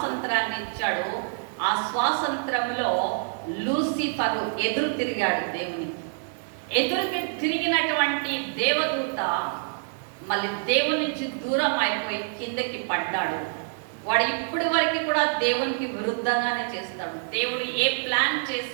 ఇచ్చాడు. ఆ స్వాతంత్రంలో లూసిఫరు ఎదురు తిరిగాడు దేవునికి. ఎదురుకి తిరిగినటువంటి దేవదూత మళ్ళీ దేవుని నుంచి దూరం అయిపోయి కిందకి పడ్డాడు. వాడు ఇప్పటి వరకు కూడా దేవునికి విరుద్ధంగానే చేస్తాడు. దేవుడు ఏ ప్లాన్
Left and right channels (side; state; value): left; silent; digital silence